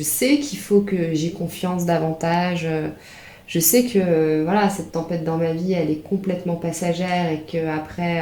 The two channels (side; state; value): both; identical; correlation 1.00